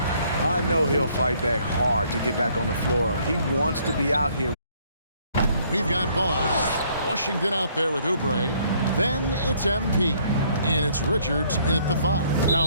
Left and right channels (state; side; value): inverted; both; correlation -0.64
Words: I know he'll fight back hard to get back on the floor. He wants to be out here. We've got ball. Washington out there with Oubre. Then it's MP. And it's Richards in at the 5,